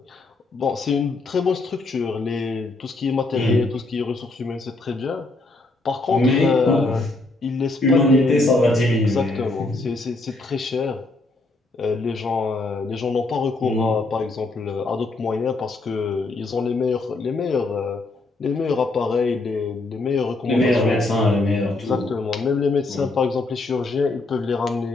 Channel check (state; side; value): quieter; right; 3.1 dB